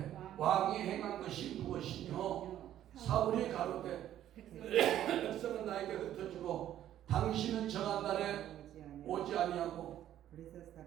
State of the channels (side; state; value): left; quieter; 11.8 dB